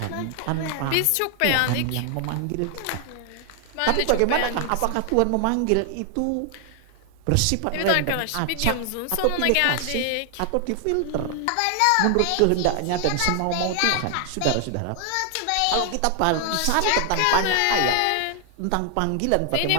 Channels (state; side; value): different; both; correlation 0.00